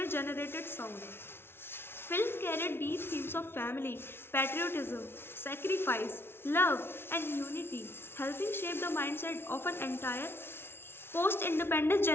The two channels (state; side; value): late; right; 0.11 ms